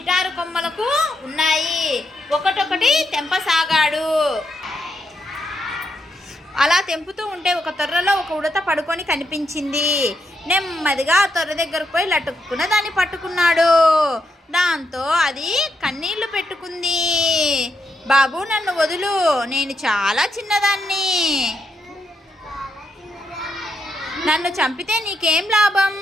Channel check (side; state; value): both; normal; correlation 0.81